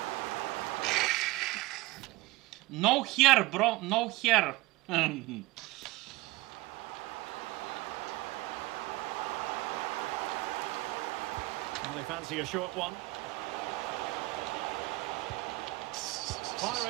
No hair, bro. No hair. Well, they fancy a short one.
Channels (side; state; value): left; quieter; 21.0 dB